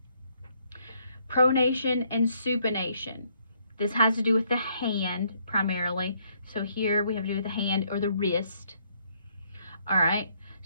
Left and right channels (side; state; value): both; inverted; correlation -0.69